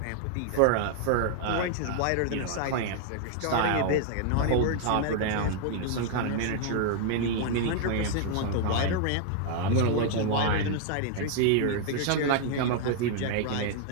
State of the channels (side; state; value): both; different; correlation 0.00